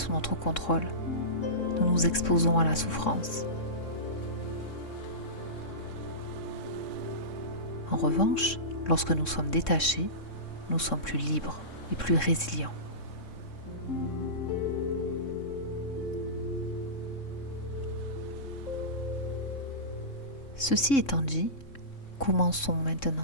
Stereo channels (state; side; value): late; right; 3.6 ms